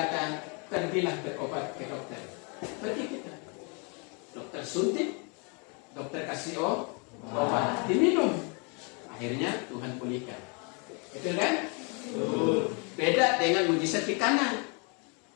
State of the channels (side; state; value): right; quieter; 34.3 dB